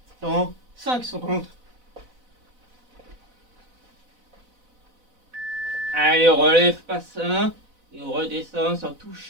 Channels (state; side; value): late; left; 4.0 ms